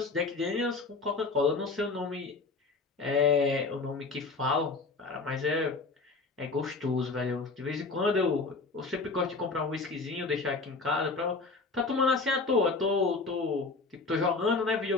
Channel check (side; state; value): right; quieter; 3.9 dB